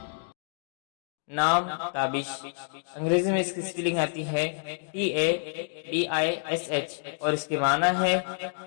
نام تابش، انگریزی میں اس کی سپیلنگ آتی ہے TABISH اور اس کے معنی ہے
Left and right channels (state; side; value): silent; right; digital silence